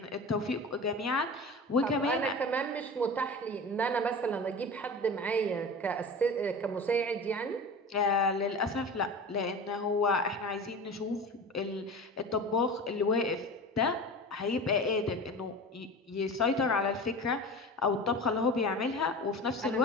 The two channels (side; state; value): both; normal; correlation 0.33